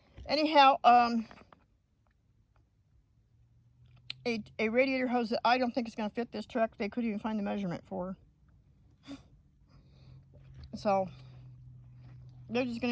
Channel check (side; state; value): both; identical; correlation 1.00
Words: Anyhow, a radiator hose that I don't think is going to fit this truck, they couldn't even find the measurement for. So, they're just